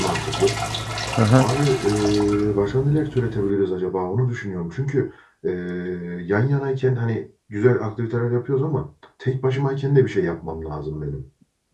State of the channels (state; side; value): identical; both; correlation 1.00